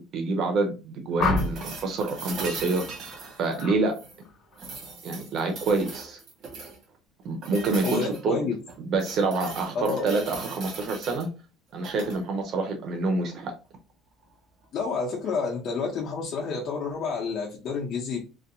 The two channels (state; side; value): normal; both; correlation 0.55